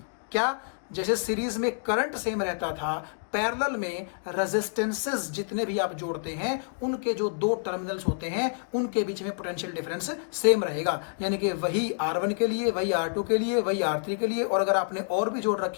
क्या, जैसे सीरीज में करंट सेम रहता था, पैरेलल में रेजिस्टेंसेस जितने भी आप जोड़ते हैं उनके जो दो टर्मिनल्स होते हैं उनके बीच में पोटेंशियल डिफरेंस सेम रहेगा। यानी कि वही R1 के लिए, वही R2 के लिए, वही R3 के लिए, और अगर आपने और भी जोड़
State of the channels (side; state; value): right; silent; digital silence